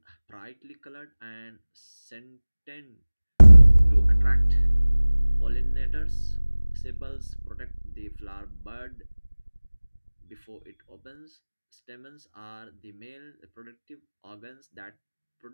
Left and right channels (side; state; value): both; inverted; correlation -1.00